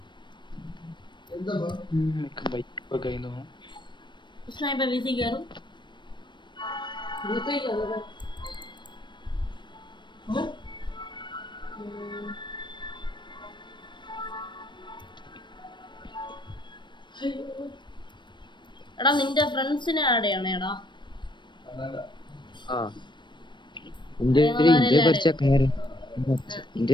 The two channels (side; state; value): right; late; 0.22 ms